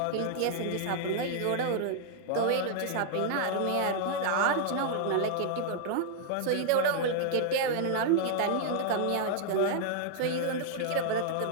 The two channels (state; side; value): different; both; correlation -0.01